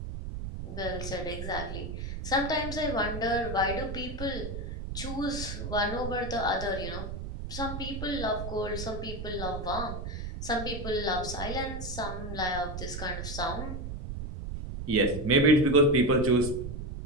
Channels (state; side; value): noise; right; rumble, 6 dB below the sound